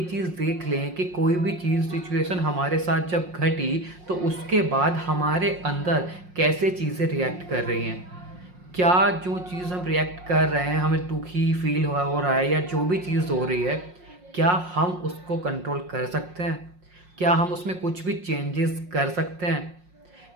चीज़ देख लें कि कोई भी चीज़, सिचुएशन हमारे साथ जब घटी तो उसके बाद हमारे अंदर कैसे चीज़ें रिएक्ट कर रही हैं, क्या जो चीज़ हम रिएक्ट कर रहे हैं, हमें दुखी फील हो रहा है या जो भी चीज़ हो रही है, क्या हम उसको कंट्रोल कर सकते हैं, क्या हम उसमें कुछ भी चेंजेस कर सकते हैं।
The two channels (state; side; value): late; left; 5.6 ms